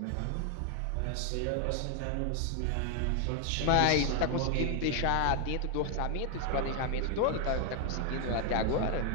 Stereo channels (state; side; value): different; both; correlation 0.00